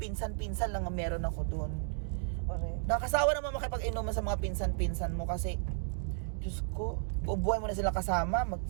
lang ang meron ako doon. Correct. Nakasawa naman makipag-inuman sa mga pinsan-pinsan mo kasi Diyos ko, bubuhay mo na sila kasama,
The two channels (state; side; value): silent; left; digital silence